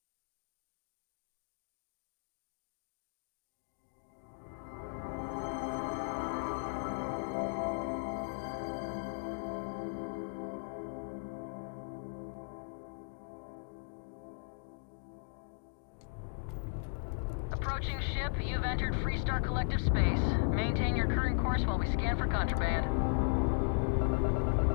Approaching ship, you've entered Freestar Collective space. Maintain your current course while we scan for contraband.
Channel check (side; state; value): right; silent; digital silence